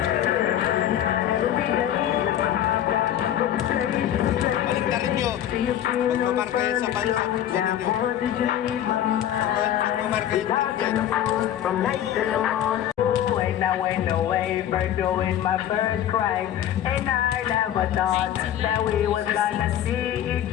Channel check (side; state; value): right; quieter; 11.2 dB